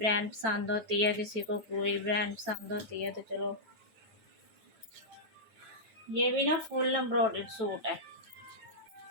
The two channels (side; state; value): left; late; 9.1 ms